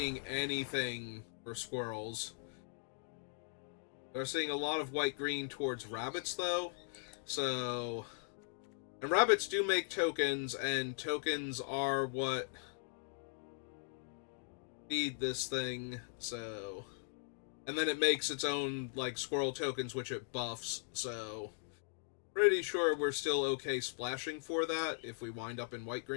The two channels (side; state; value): right; silent; digital silence